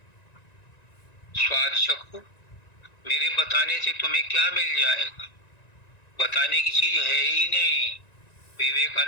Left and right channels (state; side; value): late; right; 1.9 ms